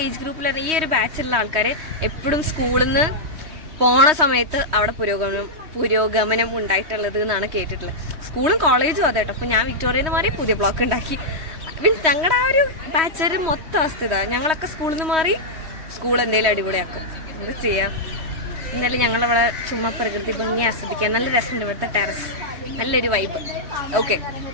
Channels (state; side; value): late; left; 3.2 ms